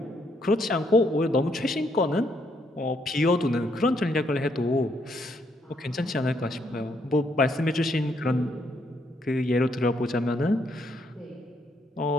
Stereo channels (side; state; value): both; normal; correlation 0.73